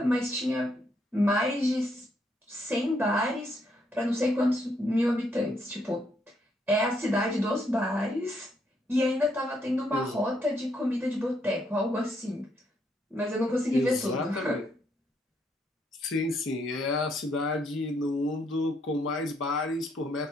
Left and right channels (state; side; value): normal; both; correlation 0.74